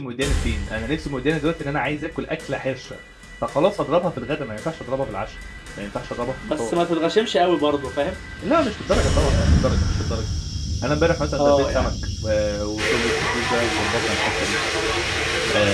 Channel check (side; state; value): both; identical; correlation 1.00